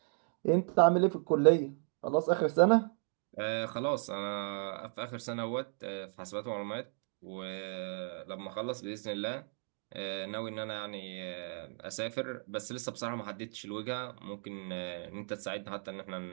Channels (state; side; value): silent; left; 54 dB below the other